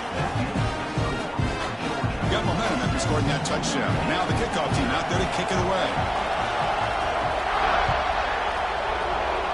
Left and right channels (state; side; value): identical; both; correlation 1.00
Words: Got momentum after scoring that touchdown. Now the kickoff team out there to kick it away.